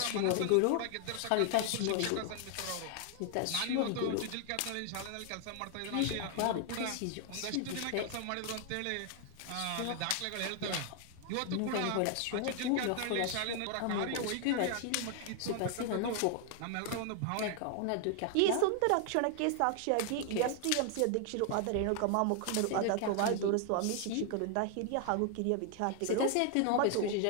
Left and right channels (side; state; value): both; different; correlation 0.00